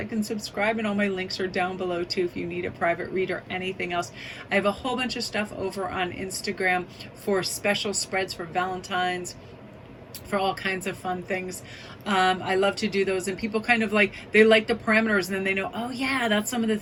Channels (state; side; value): identical; both; correlation 1.00